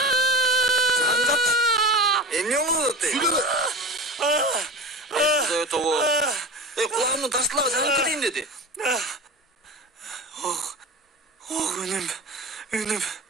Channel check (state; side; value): normal; both; correlation 0.31